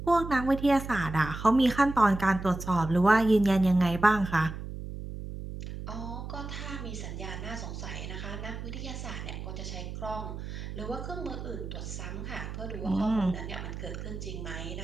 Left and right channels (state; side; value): noise; right; hum, 8 dB below the sound